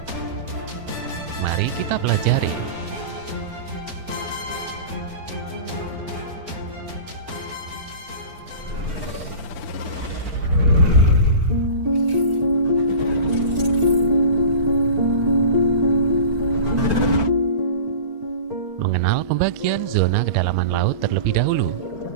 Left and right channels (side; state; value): left; late; 4.4 ms